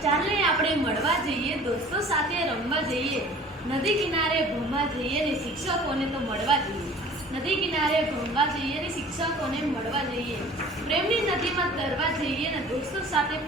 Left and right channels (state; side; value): normal; both; correlation 0.46